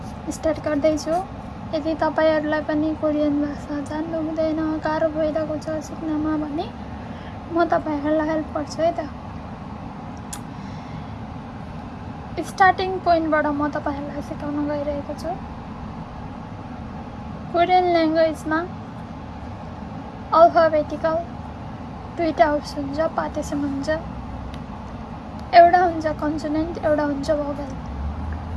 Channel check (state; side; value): identical; both; correlation 1.00